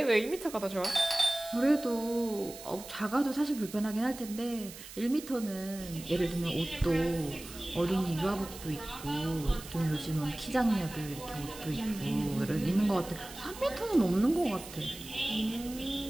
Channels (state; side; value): noise; right; hiss, 14 dB below the sound